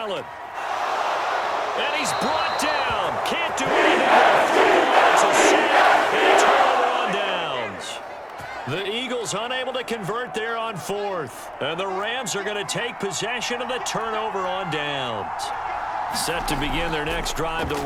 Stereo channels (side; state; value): both; identical; correlation 1.00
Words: And he's brought down. Can't do anything. It's a sack and a turnover on downs. The Eagles unable to convert there on 4th. And the Rams are going to take possession of the turnover on downs. Set to begin their next drive,